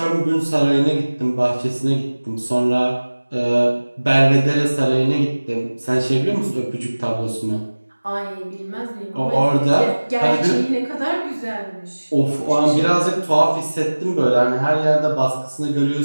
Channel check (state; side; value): inverted; both; correlation -1.00